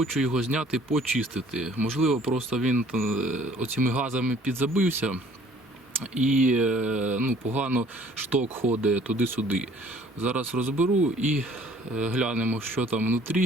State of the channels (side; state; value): both; normal; correlation 0.55